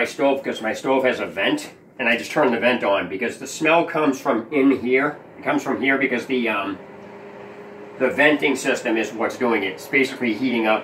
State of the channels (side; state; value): both; identical; correlation 1.00